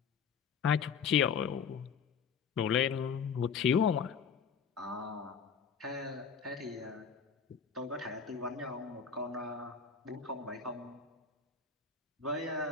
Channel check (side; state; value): right; quieter; 6.4 dB